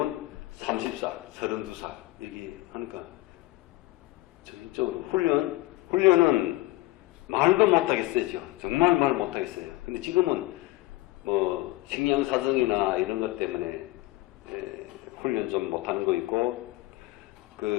30살, 32살 이렇게 하니까 전적으로 훈련은 말도 못하겠어요. 정말 말 못하겠어요. 근데 지금은 뭐 식량사정이나 이런 것 때문에 훈련 좀 못하는 거 있고,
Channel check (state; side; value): quieter; right; 18.8 dB